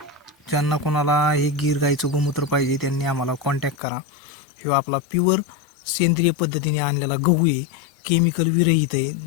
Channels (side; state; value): right; drops out; at 3.8 s